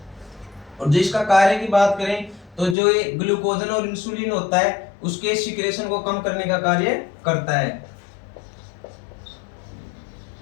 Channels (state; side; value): drops out; right; at 2.8 s